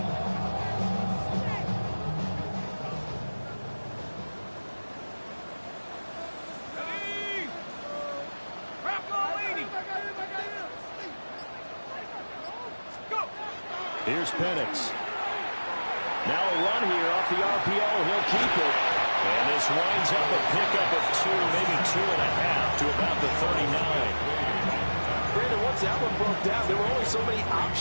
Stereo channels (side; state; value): both; inverted; correlation -1.00